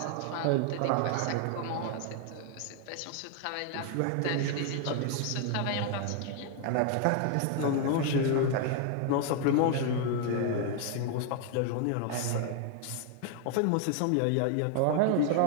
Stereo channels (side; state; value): both; different; correlation 0.00